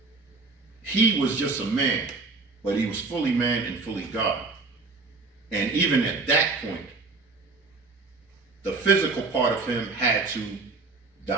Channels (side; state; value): left; quieter; 3.9 dB